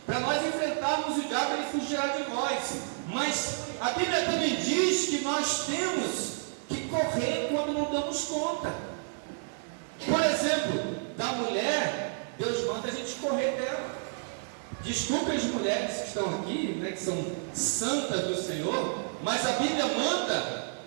para nós enfrentarmos o diabo, ele fugirá de nós. Mas a Bíblia também diz que nós temos que correr quando não damos conta. Por exemplo, da mulher, Deus manda a gente correr dela. Desculpe as mulheres que estão aqui, né, que são santas do Senhor, mas a Bíblia manda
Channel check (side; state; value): left; silent; digital silence